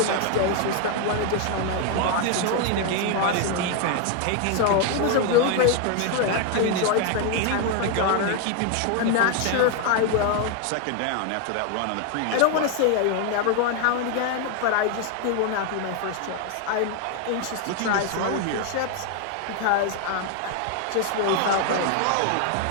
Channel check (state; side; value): different; both; correlation 0.01